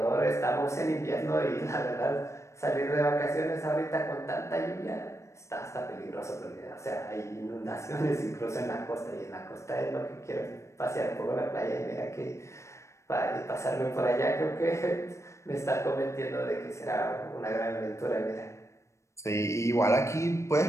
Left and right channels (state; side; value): late; right; 0.14 ms